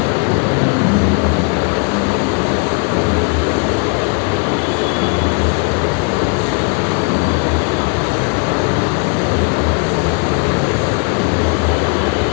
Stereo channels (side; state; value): right; quieter; 36.7 dB